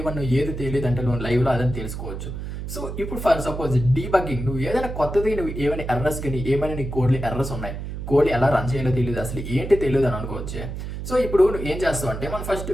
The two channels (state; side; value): noise; right; hum, 7 dB below the sound